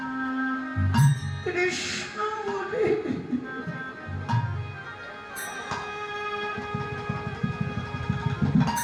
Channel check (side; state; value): both; identical; correlation 1.00